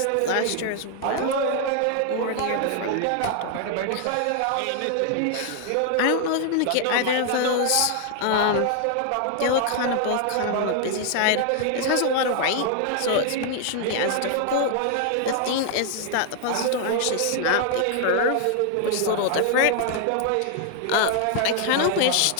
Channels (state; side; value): different; both; correlation 0.00